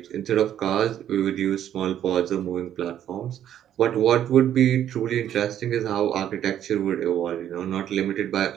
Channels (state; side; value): quieter; left; 10.7 dB